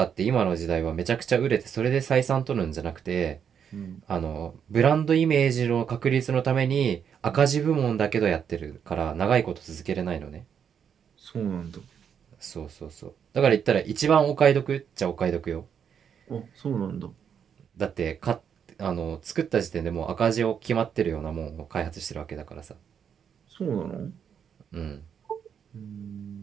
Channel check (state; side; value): quieter; left; 7.8 dB